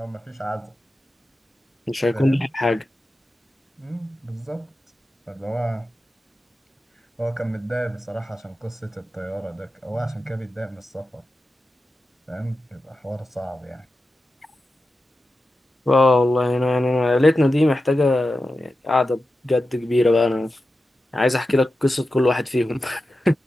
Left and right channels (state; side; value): normal; both; correlation 0.92